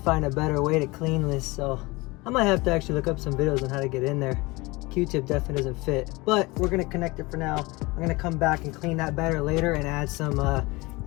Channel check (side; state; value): right; quieter; 23.4 dB